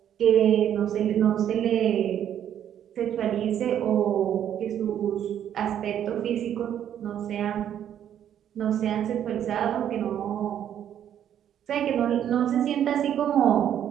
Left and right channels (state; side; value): quieter; left; 10.0 dB